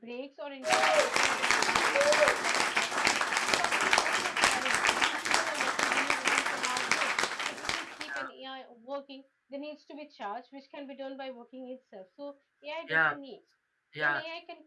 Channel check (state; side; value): identical; both; correlation 1.00